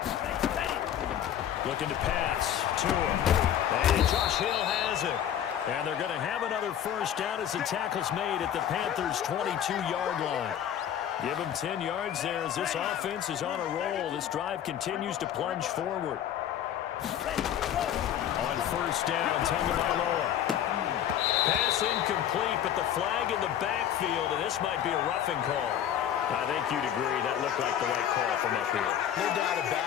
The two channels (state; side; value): quieter; right; 10.2 dB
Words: Looking to pass to him. And Josh Hill has it. And they're going to have another first down as the tackle's made at the Panthers' 22-yard line. Give them 10 yards there as this offense is on a roll. This drive continues to plunge forward. On 1st down, Tagovailoa. Pass incomplete, but the flag in the backfield, and this might be a roughing call. I think you'd agree that looked like the right call from up here. No doubt